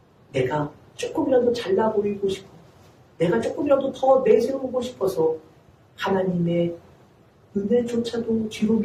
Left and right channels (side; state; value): both; identical; correlation 1.00